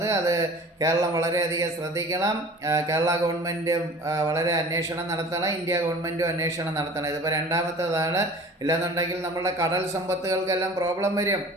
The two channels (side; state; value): both; normal; correlation 0.43